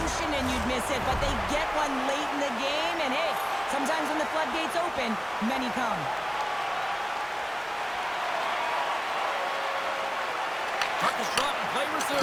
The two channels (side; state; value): both; identical; correlation 1.00